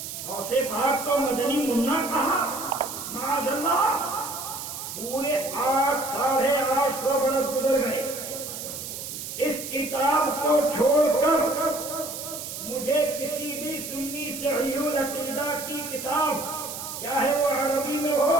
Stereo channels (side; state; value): right; noise; hiss, 8 dB below the sound